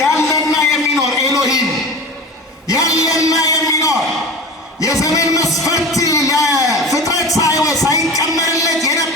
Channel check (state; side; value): normal; both; correlation 0.33